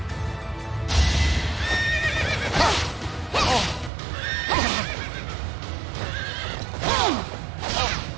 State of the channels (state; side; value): drops out; left; at 3.9 s